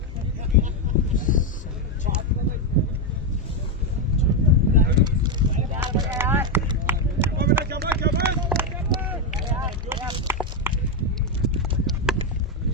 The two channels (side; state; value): both; normal; correlation 0.05